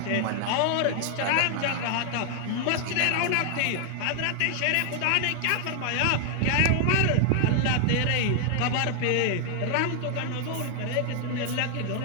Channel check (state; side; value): different; both; correlation 0.00